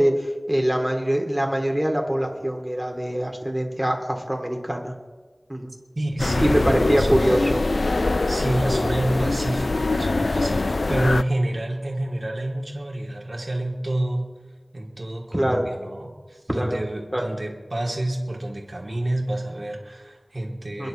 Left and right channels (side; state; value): both; normal; correlation 0.98